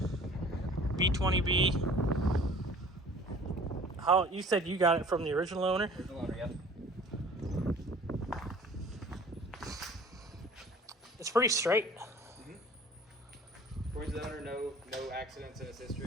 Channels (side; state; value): both; normal; correlation 0.48